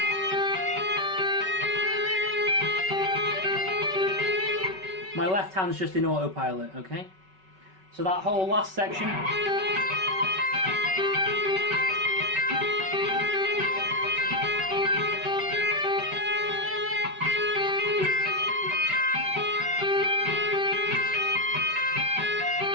My left hand's just in autopilot, okay? So that whole last section.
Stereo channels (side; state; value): left; late; 5.3 ms